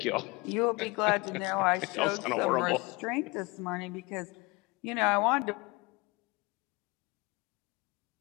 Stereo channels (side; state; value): right; quieter; 25.4 dB